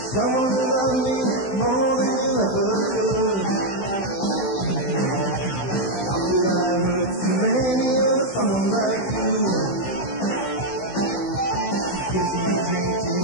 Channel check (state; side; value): late; right; 16 ms